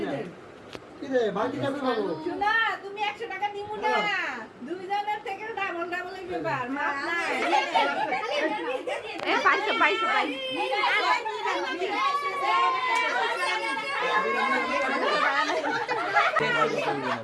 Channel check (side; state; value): both; identical; correlation 1.00